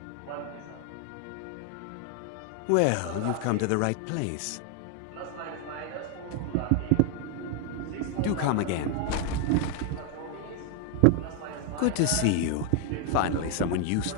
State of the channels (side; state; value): both; different; correlation 0.00